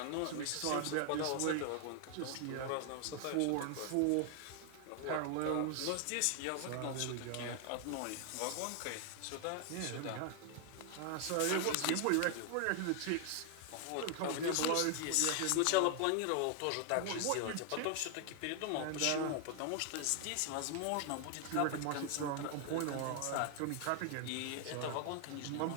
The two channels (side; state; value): both; different; correlation 0.00